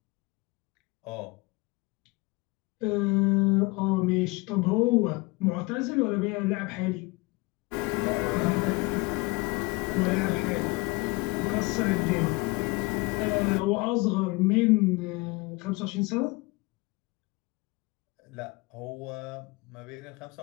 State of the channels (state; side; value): quieter; right; 24.8 dB